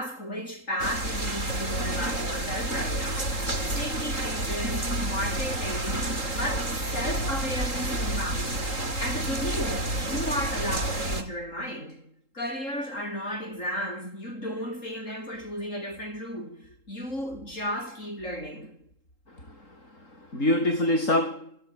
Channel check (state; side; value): late; right; 3.8 ms